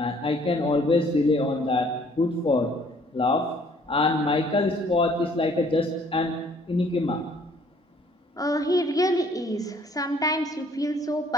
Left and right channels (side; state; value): both; normal; correlation 0.59